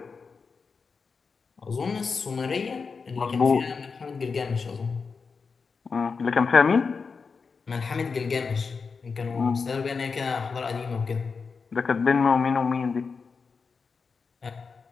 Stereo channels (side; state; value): right; quieter; 5.1 dB